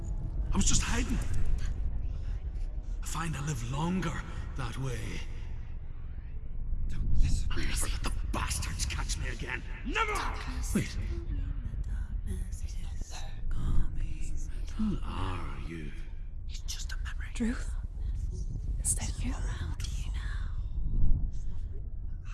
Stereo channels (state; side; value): identical; both; correlation 1.00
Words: I was just hiding. I find I live longer that way. Don't listen. I'll never let the bastards catch me again. Never! Wait. Who are you? It's just a memory. Druth? Is that you? Around you now.